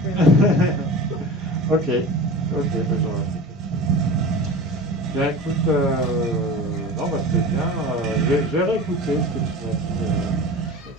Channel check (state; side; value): normal; both; correlation 0.35